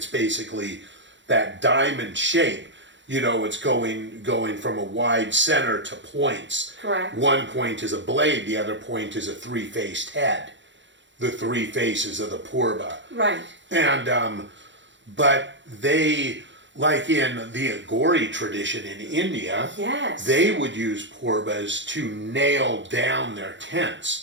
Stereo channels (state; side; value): late; left; 0.53 ms